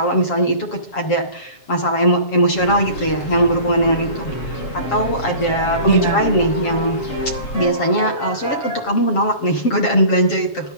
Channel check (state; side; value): late; right; 7.4 ms